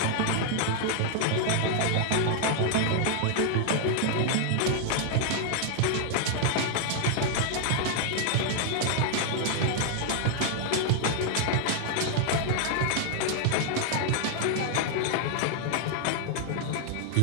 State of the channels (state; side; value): different; both; correlation 0.00